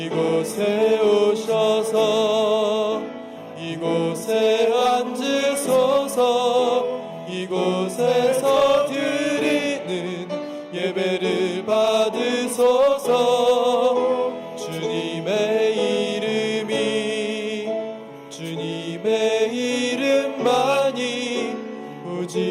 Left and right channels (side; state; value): both; identical; correlation 1.00